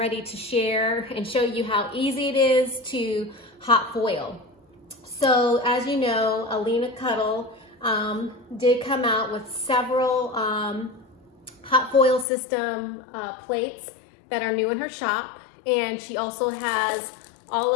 to share and show you how easy it is to hot foil. So as you know, Alina did come out with several hot foil system plates that are new in her shop, and she also has all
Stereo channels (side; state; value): right; drops out; at 12.2 s